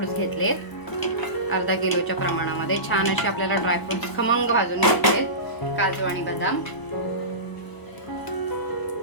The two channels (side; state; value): right; late; 1.0 ms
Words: घेतलेत. 1/2 किलोच्या प्रमाणामध्ये छान असे आपल्याला ड्रायफ्रुट्स खमंग भाजून घेतलेत, काजू आणि बदाम.